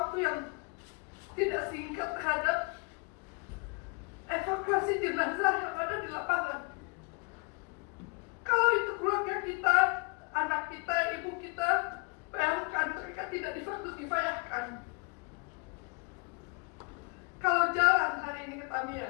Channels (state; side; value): quieter; right; 32.2 dB